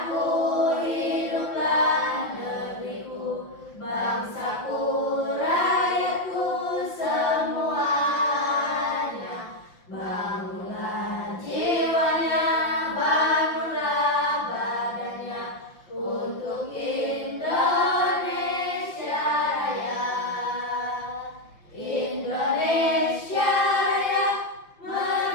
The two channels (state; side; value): late; right; 5.8 ms